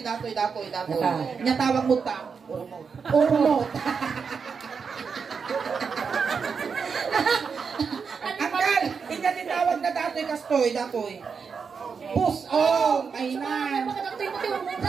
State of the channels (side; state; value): left; quieter; 5.8 dB